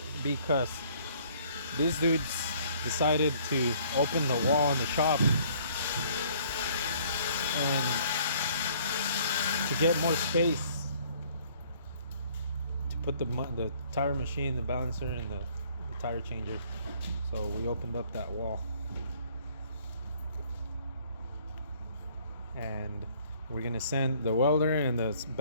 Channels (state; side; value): inverted; both; correlation -0.59